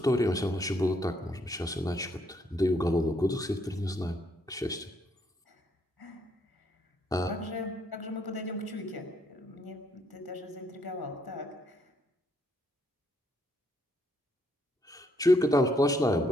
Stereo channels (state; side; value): normal; both; correlation 0.72